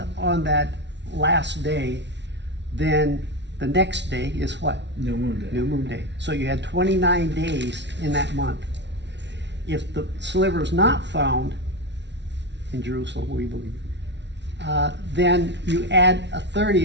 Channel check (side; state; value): left; late; 0.51 ms